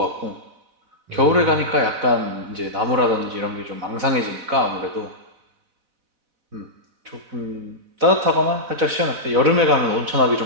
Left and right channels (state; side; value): late; left; 4.0 ms